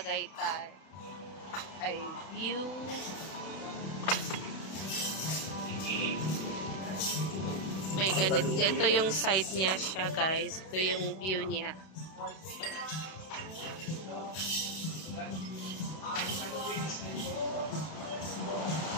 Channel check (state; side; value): late; right; 32 ms